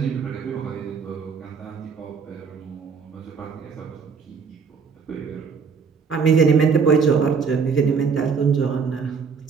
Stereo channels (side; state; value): left; quieter; 5.7 dB